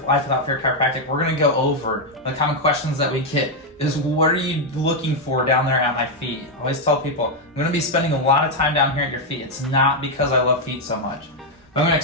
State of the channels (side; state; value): both; normal; correlation 0.01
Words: Life Without Fear Chiropractic. We're gonna go over the common questions that we get is, what are you looking for down there at my feet? I always tell people, I'm gonna be spending a lot of time down here at your feet. It's not because I love feet so much. But I'm gonna